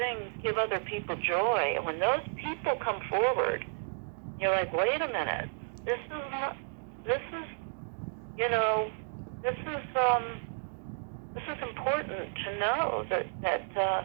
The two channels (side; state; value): left; silent; digital silence